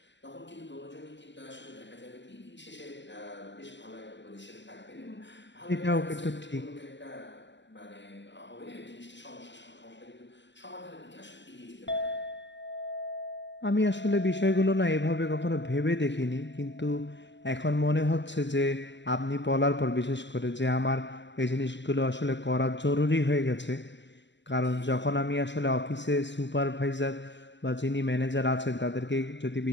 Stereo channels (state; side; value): late; right; 0.53 ms